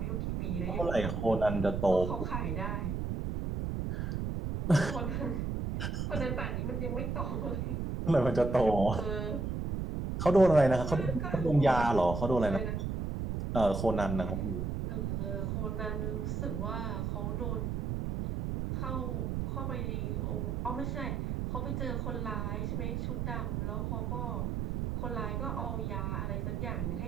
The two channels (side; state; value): right; noise; rumble, 2 dB below the sound